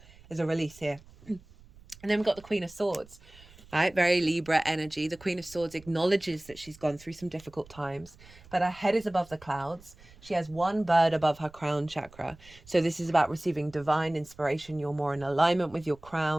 there's a release here. And then we've got the Queen of Swords, right? Very Libra energy. The Queen of Swords acknowledges that she's gone through some difficult times, but her head is above the clouds. She has one bird above her crown chakra. So this is about receiving divine inspiration. You're more in alignment with your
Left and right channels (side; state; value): right; noise; rumble, 23 dB below the sound